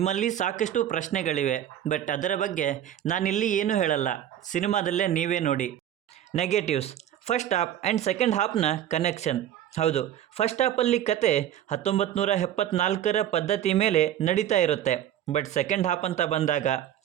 ಸಾಕಷ್ಟು ಪ್ರಶ್ನೆಗಳಿವೆ, ಬಟ್ ಅದರ ಬಗ್ಗೆ ನಾನಿಲ್ಲಿ ಏನೂ ಹೇಳಲ್ಲ, ಸಿನಿಮಾದಲ್ಲೇ ನೀವೇ ನೋಡಿ. Negatives. First half and second ಹಾಫ್ನ ಕನೆಕ್ಷನ್. ಹೌದು, ಫಸ್ಟ್ ಹಾಫಲ್ಲಿ ಕತೆ 1974ರ ಪದ್ಧತಿ ಮೇಲೆ ನಡೀತಾ ಇರುತ್ತೆ. ಬಟ್ ಸೆಕೆಂಡ್ ಹಾಫ್ ಅಂತ ಬಂದಾಗ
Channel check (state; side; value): quieter; left; 11.1 dB